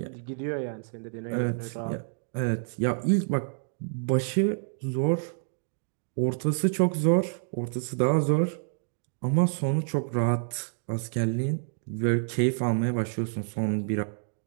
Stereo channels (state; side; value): silent; left; digital silence